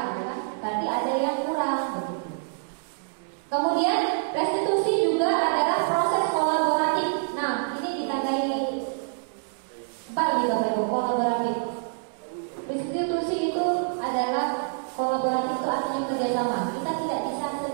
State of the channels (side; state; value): left; silent; 59 dB below the other